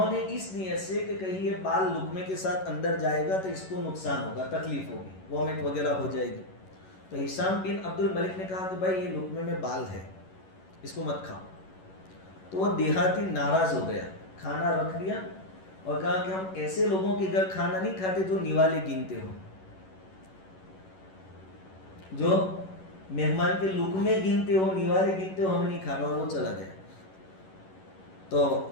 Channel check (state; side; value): late; right; 11 ms